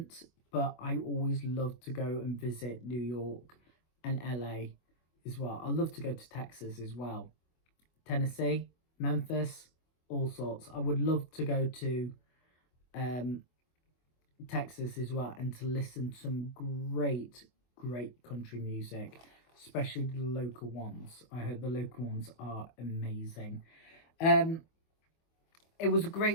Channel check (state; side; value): late; right; 25 ms